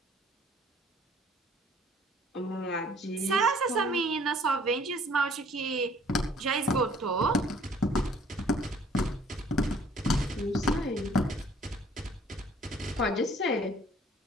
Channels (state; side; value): normal; both; correlation 0.57